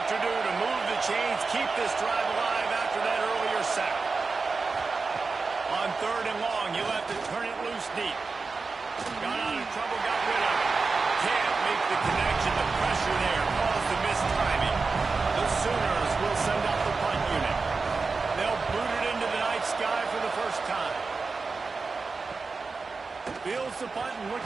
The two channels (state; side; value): quieter; left; 4.3 dB